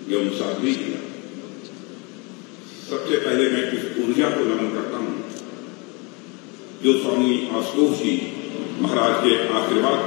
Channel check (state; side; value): quieter; right; 29.8 dB